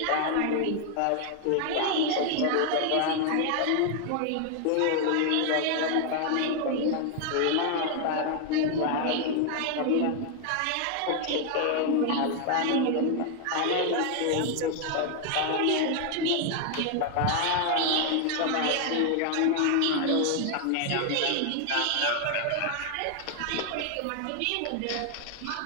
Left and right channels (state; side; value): different; both; correlation 0.00